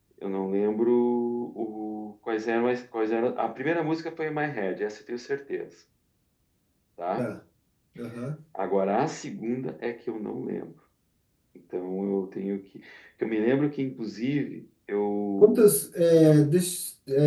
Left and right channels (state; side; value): identical; both; correlation 1.00